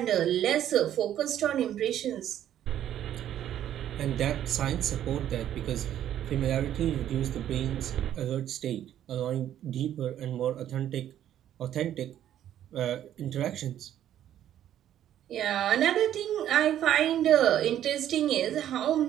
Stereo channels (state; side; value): quieter; left; 11.2 dB